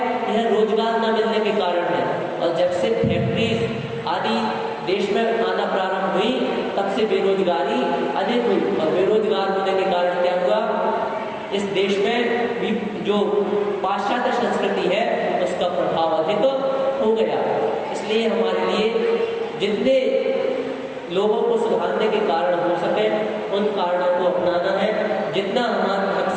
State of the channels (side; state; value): both; identical; correlation 1.00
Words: यह रोजगार न मिलने के कारण है। और जब से फैक्ट्रीज आदि देश में आना प्रारंभ हुई, तब से बेरोजगारी अधिक हुई और बेरोजगार होने के कारण क्या हुआ, इस देश में भी जो पाश्चात्य संस्कृति है उसका प्रभाव अधिक हो गया। इसलिए हमारे लिए जितने लोगों को सुधारने के कारण हो सके उन कारणों को अपनाना है। जितना